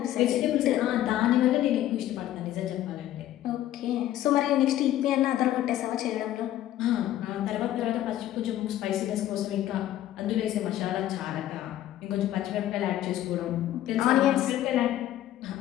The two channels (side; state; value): right; quieter; 13.0 dB